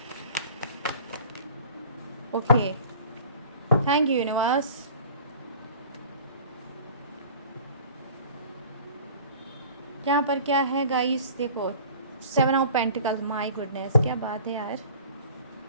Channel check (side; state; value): both; inverted; correlation -0.46